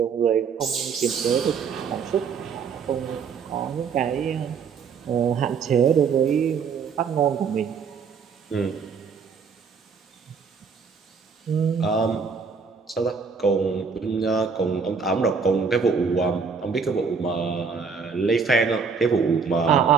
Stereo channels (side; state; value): left; quieter; 5.6 dB